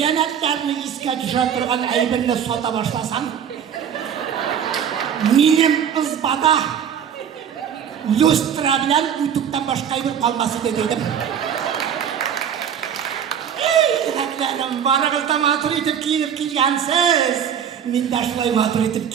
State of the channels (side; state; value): left; quieter; 8.4 dB